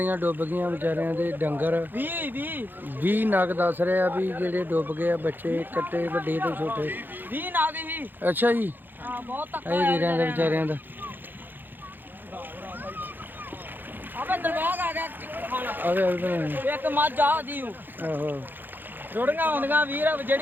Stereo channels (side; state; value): left; late; 0.091 ms